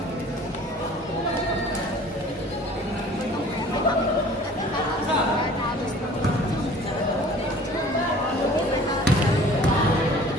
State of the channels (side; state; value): both; normal; correlation 0.48